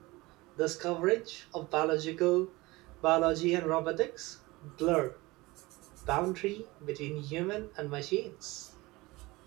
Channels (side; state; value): left; quieter; 21.6 dB